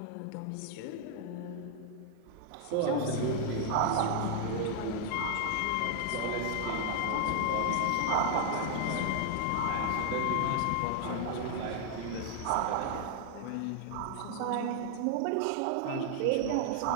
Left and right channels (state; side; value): different; both; correlation 0.00